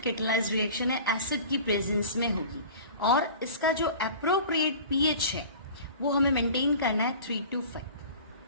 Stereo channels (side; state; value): both; inverted; correlation -0.40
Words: कैटालाइज्ड रिएक्शन है, एसिड की प्रेजेंस में होगी। और इसका जो एप्रोप्रिएट पीएच है वो हमें मेंटेन करना है 3 to 5।